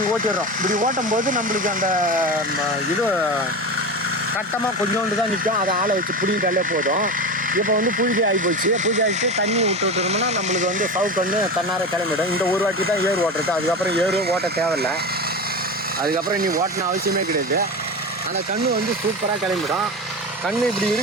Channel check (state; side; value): normal; both; correlation 0.24